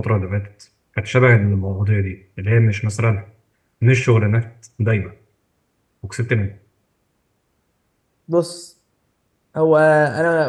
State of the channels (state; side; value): identical; both; correlation 1.00